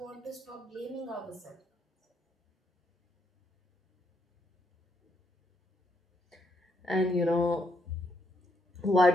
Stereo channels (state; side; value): normal; both; correlation 0.75